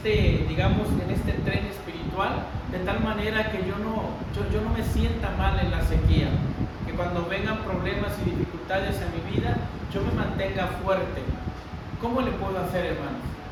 digamos, en este tren espiritual, de tal manera que yo no me sienta mal en la sequía? Que cuando vengan problemas y dificultades en mi vida, yo me mantenga fuerte. ¿Cómo le puedo hacer, hermanos?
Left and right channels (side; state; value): both; identical; correlation 1.00